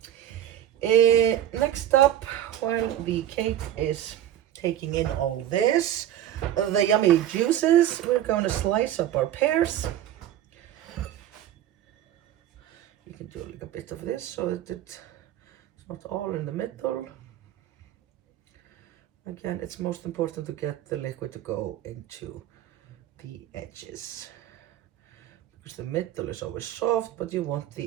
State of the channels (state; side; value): quieter; left; 11.7 dB